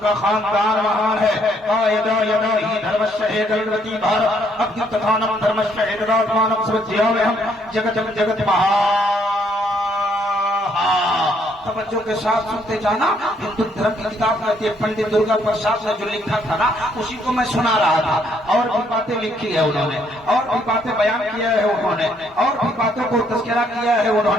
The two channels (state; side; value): normal; both; correlation 0.69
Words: खानदान महान है। का यदा यदा ही धर्मस्य हेतुर्वती भारत अद्युत्थानम धर्मस्य हेतुरात्मानम स्वज्याम्यहम जगत जगत महा। तवज्जो के साथ सुनते जाना। हिंदू धर्म की किताब कहती है, पंडित दुर्गा प्रसाद ने जो लिखा था ना, उसी को मैं सुना रहा था। और भी बातें लिखी है उन्होंने, और भी बातें बयान किया है उन्होंने, और भी बातों को तस्करा किया है